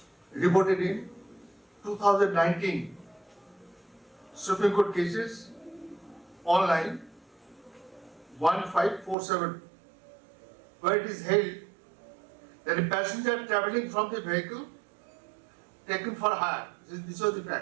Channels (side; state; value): left; drops out; at 9.2 s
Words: reported in 2019 Supreme Court cases online 1547, where it is held that a passenger travelling from the vehicle taken for hire, this was the